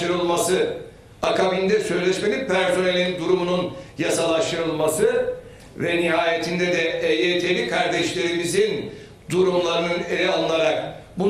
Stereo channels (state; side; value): identical; both; correlation 1.00